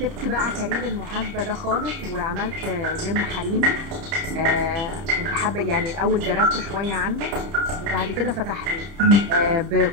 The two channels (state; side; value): late; left; 30 ms